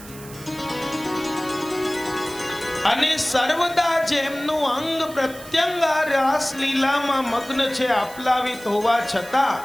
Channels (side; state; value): right; noise; hiss, 17 dB below the sound